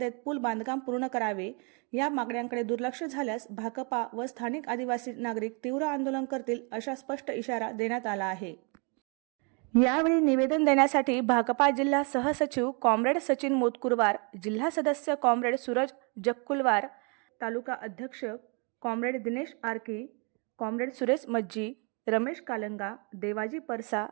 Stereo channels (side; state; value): left; quieter; 34.6 dB